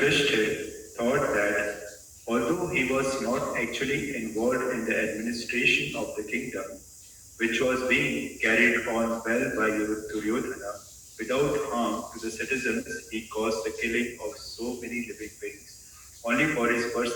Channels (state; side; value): identical; both; correlation 1.00